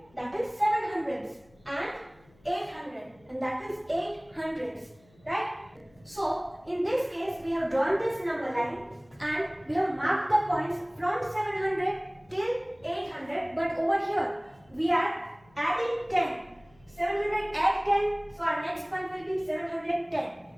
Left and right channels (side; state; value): left; noise; hum, 30 dB below the sound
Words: that is 700s, and 800, and that is 800s, right? So in this case we have drawn this number line and we have marked the points from 700 till 800, but over here we are adding 10. 700 add 10, so our next point will be 710.